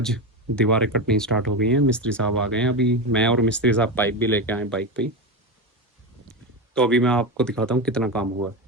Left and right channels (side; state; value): both; normal; correlation 0.17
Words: दीवारें कटनी स्टार्ट हो गई हैं, मिस्त्री साहब आ गए हैं। अभी मैं और मिस्त्री साहब पाइप भी लेके आए बाइक पे ही। तो अभी मैं आपको दिखाता हूँ कितना काम हुआ है।